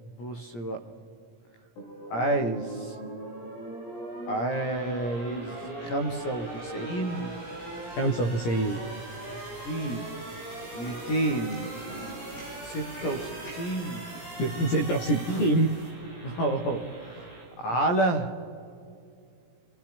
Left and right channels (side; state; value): right; late; 17 ms